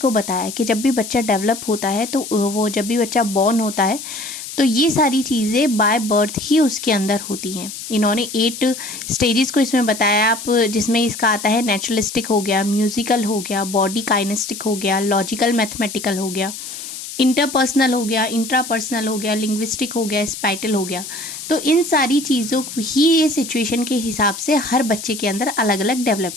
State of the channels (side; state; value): left; noise; hiss, 10 dB below the sound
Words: बताया कि जब भी बच्चा डेवलप होता है तो वो जब भी बच्चा बॉर्न होता है तो ये सारी चीज़ें बाय बर्थ ही उसके अंदर होती हैं। इन्होंने 8 स्टेजेस को इसमें बताया, आप जिसमें इसका आता है नेचुरलिस्टिक हो गया, म्यूजिकल हो गया, बॉडी काइनेस्टिक हो गया, लॉजिकल मैथमेटिकल हो गया, इंटरपर्सनल हो गया, इंट्रापर्सनल हो गया, लिंग्विस्टिक हो गया, स्पाइटल हो गया। तो इन सारी चीज़ों ही ये सिचुएशन के हिसाब से हर बच्चे के अंदर अलग अलग